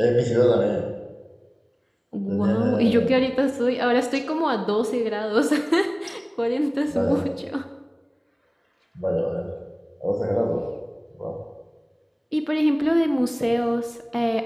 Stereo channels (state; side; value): identical; both; correlation 1.00